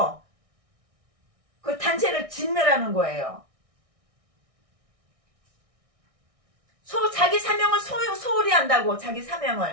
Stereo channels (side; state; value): left; late; 1.6 ms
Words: 그 단체를 진멸하는 거예요. 자기 사명을 소홀히 한다고 자기